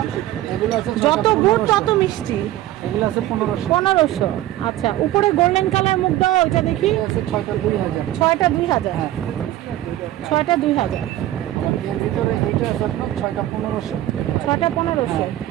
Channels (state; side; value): quieter; left; 14.6 dB